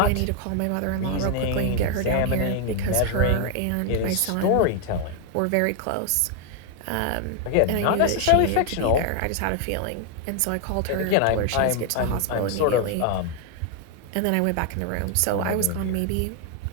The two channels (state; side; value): different; both; correlation 0.00